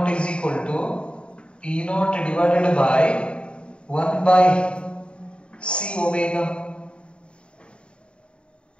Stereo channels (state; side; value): late; right; 0.055 ms